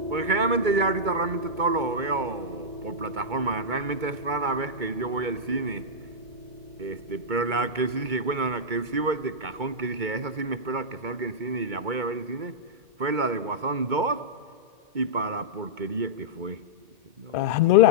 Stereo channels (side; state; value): left; late; 2.2 ms